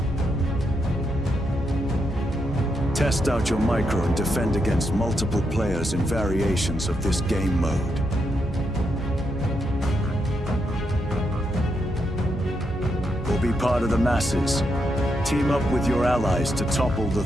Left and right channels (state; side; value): normal; both; correlation 0.82